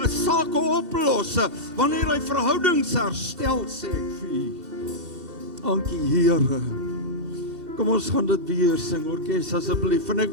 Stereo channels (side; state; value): left; late; 2.7 ms